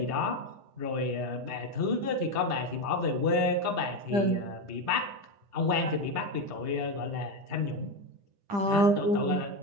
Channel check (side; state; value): left; late; 10 ms